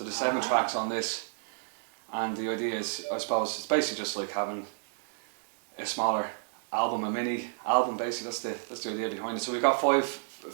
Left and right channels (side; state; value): left; silent; digital silence